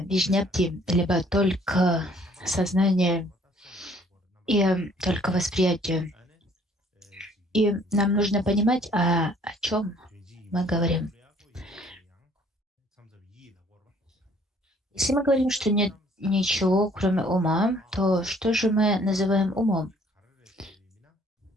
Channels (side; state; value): both; normal; correlation 0.59